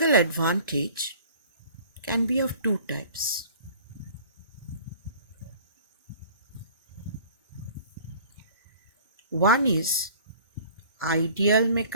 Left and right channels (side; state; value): both; inverted; correlation -0.48